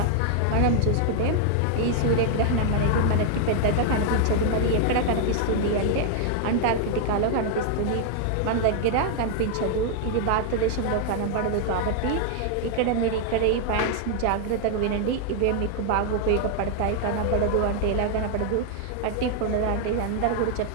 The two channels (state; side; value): different; both; correlation 0.00